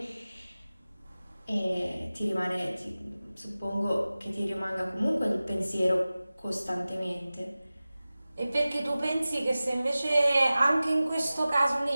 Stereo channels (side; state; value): both; inverted; correlation -0.97